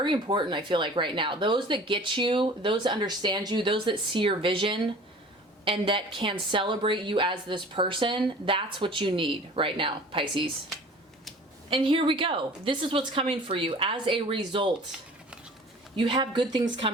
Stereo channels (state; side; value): normal; both; correlation 0.45